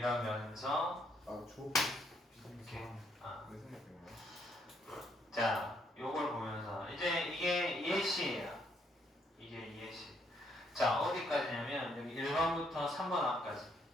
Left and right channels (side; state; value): both; normal; correlation 0.72